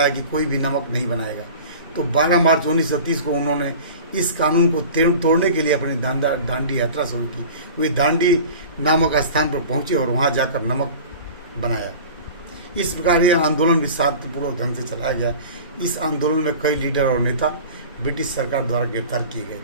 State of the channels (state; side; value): inverted; both; correlation -0.38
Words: कि कोई भी नमक नहीं बनाएगा, तो 12 मार्च 1930 को उन्होंने इस कानून को तोड़ने के लिए अपनी दांडी यात्रा शुरू की। वे दांडी नामक स्थान पर पहुंचे और वहां जाकर नमक बनाया। इस प्रकार यह आंदोलन भी शांतिपूर्वक ढंग से चलाया गया। इस आंदोलन में कई लीडर और नेता ब्रिटिश सरकार द्वारा गिरफ्तार किए गए